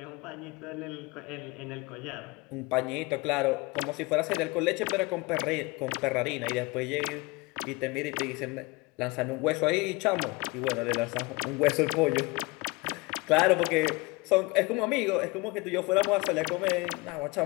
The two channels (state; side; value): quieter; right; 24.9 dB